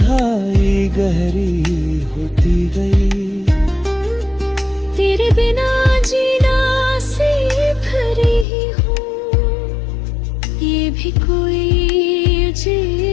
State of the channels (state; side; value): drops out; right; at 8.5 s